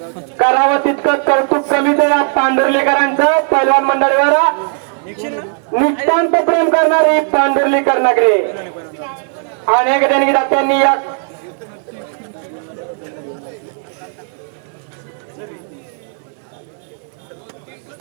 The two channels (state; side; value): silent; left; 55 dB below the other